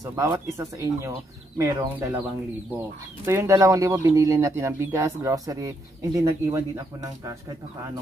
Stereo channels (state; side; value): normal; both; correlation 0.76